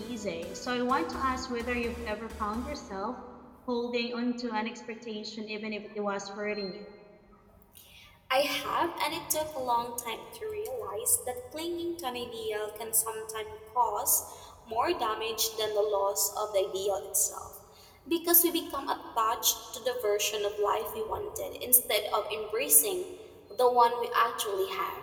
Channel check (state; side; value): identical; both; correlation 1.00